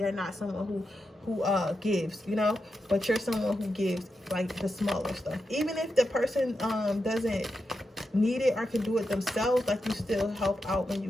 not someone who gives, you know. But you're someone who gives like the smaller stuff, even if the person doesn't need it or can do it themselves. Like, you still help out when you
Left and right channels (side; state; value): both; normal; correlation 0.87